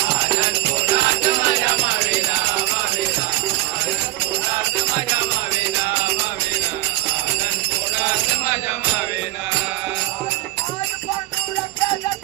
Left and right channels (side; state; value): left; quieter; 16.4 dB